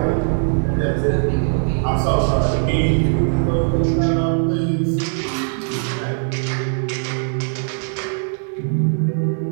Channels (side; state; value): left; silent; digital silence